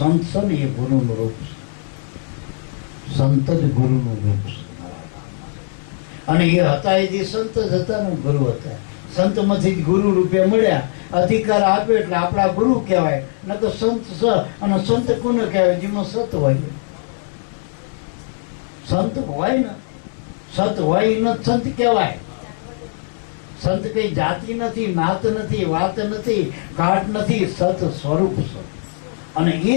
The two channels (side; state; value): right; silent; digital silence